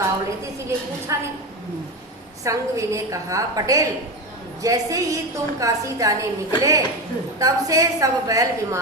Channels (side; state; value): both; normal; correlation 0.20